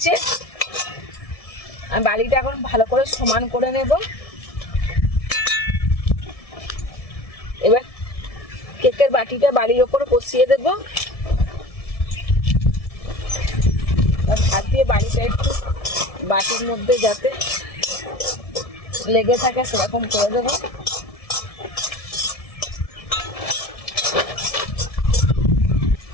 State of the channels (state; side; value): late; right; 1.7 ms